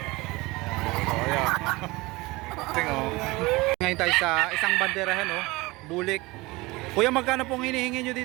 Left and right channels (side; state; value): left; quieter; 22.3 dB